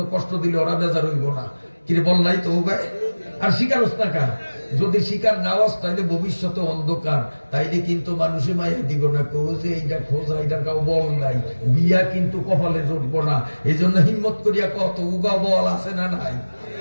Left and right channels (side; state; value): both; inverted; correlation -1.00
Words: কষ্ট দিলে ওরা বেজার হইব না। কিরে বল নাই তো গায়ে? আর শিকার হস্তাকার যদি শিকার না হস তাইলে ভবিষ্যতে অন্ধকার, তাইলে কিন্তু মানুষে মায়া দিব না, যে এইটা খোঁজা, এইটার কাউ বল নাই, বিয়া কিন্তু কপালে জুটবো না। এই জন্য হিম্মত করিয়া কত উগা বল আছে না নাই?